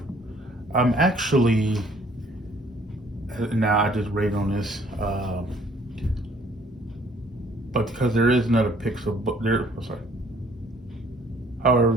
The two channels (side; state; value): both; normal; correlation 0.59